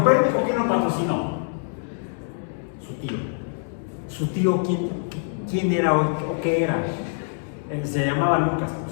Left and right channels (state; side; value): silent; right; 62 dB below the other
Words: ¿quién lo patrocinó? Su tío. ¿Su tío quién era o qué era? Se llamaba Lucas, por